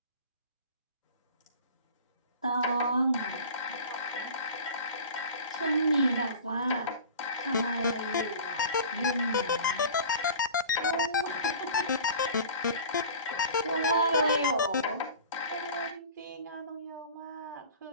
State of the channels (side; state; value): both; inverted; correlation -0.39